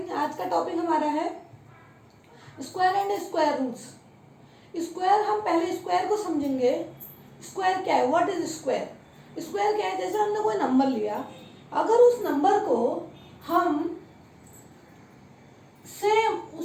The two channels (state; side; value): identical; both; correlation 1.00